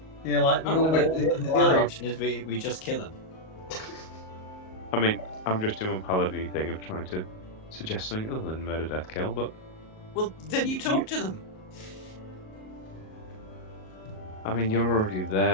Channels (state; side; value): late; right; 38 ms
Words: Yeah, like the Oh, one no, with the other option is we just kill them. I mean, I'm just doing a paladin thing of trying to suggest something other than murder, death, kill, but Well, then you talk to them. I mean, you're already